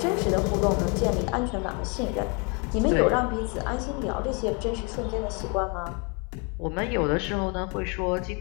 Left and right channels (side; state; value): right; quieter; 33.7 dB